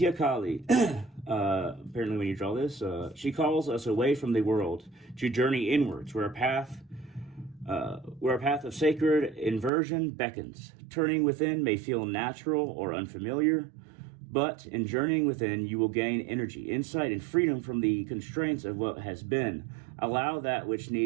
Kali. Apparently when you draw this, she calls us away from the world to journey inwards, where a path of sacred inversion beckons. Turning within may feel natural or unfamiliar, but in journeying within, you will gain energy, insight, and freedom from the constraints of what has been. Allow that which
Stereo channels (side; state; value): left; drops out; at 9.7 s